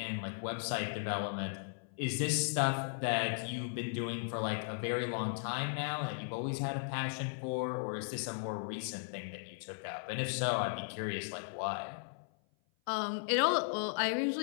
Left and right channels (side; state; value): right; silent; 53 dB below the other